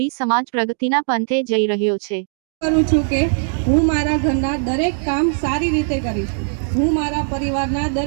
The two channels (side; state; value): left; silent; digital silence